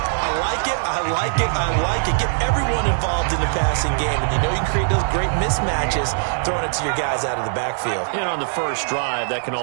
I like it, I like it, I like it. Get everyone involved in the passing game. And you know you can create those great mismatches throwing it to your guys out of the backfield. And on the first drive, that can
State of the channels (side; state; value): left; silent; digital silence